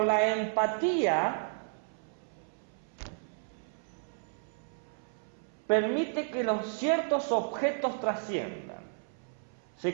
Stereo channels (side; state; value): left; silent; 56 dB below the other